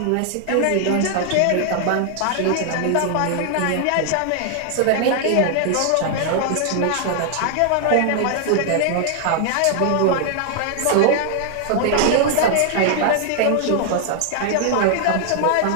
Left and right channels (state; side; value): different; both; correlation 0.00